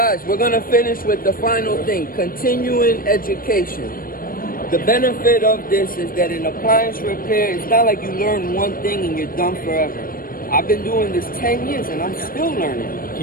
we're going to finish with the final thing, continuing education. The benefit of this is that in appliance repair, it's not like you learn one thing and you're done forever. I've been doing this 10 years and I'm still learning.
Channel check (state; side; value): late; right; 0.41 ms